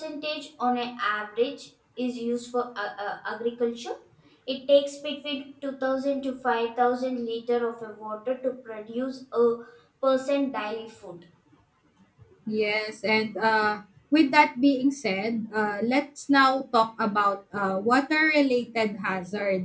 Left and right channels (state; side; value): identical; both; correlation 1.00